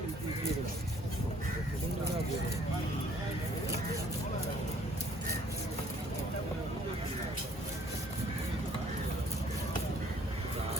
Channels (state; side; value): normal; both; correlation 0.59